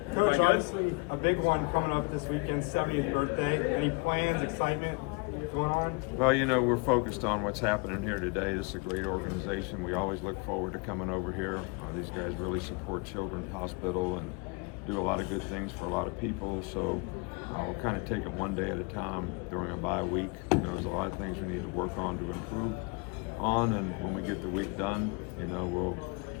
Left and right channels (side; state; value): right; quieter; 30.0 dB